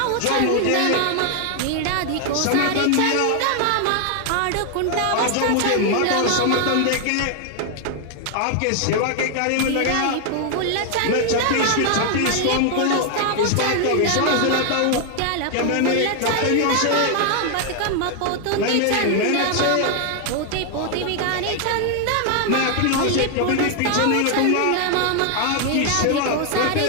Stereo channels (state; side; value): different; both; correlation 0.00